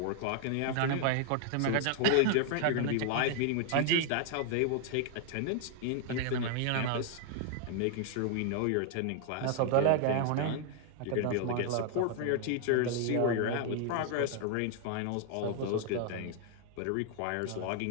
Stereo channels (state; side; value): different; both; correlation 0.00